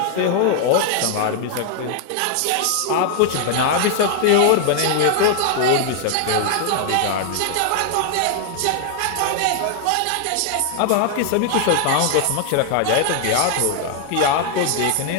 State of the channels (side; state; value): both; different; correlation 0.00